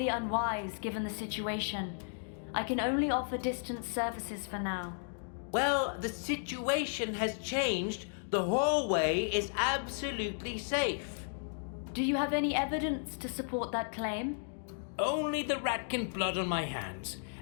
unwise given the situation. I can only offer distance services for now. Well, the situation has changed. The hallway is absolutely safe. Do you have any evidence to support that claim? Only the ratkin blood on my hands,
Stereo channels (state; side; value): silent; right; digital silence